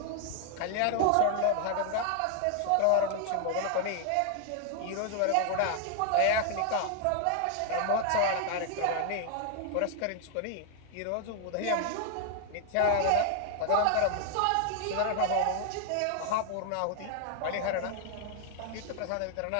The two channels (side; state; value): both; different; correlation 0.00